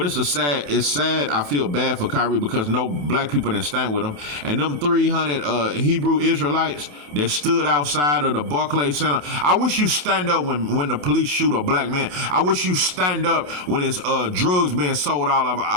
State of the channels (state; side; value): late; left; 27 ms